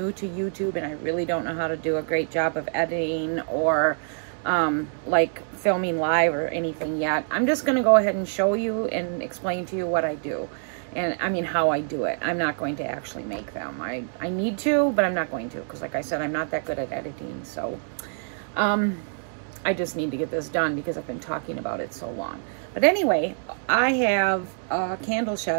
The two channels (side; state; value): left; silent; digital silence